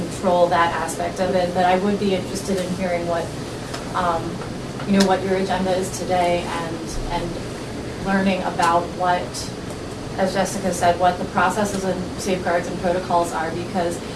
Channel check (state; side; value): identical; both; correlation 1.00